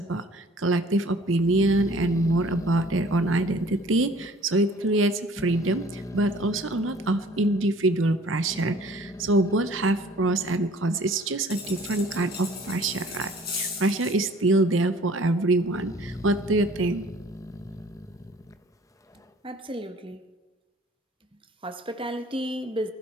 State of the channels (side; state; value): both; normal; correlation 0.52